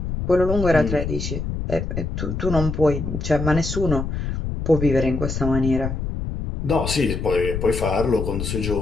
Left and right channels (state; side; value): noise; left; rumble, 4 dB below the sound